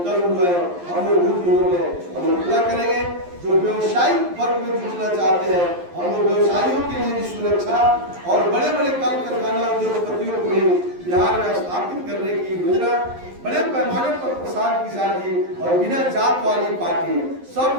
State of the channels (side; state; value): left; late; 11 ms